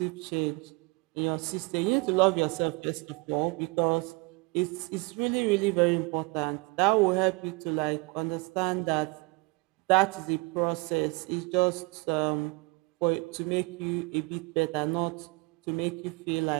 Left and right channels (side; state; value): left; quieter; 27.8 dB